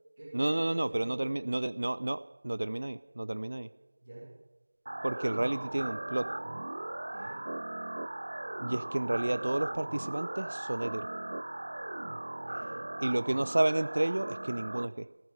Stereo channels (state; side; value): inverted; both; correlation -1.00